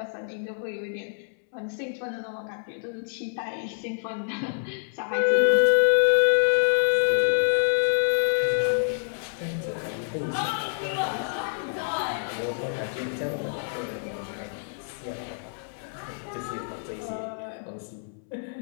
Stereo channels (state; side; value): silent; right; 60 dB below the other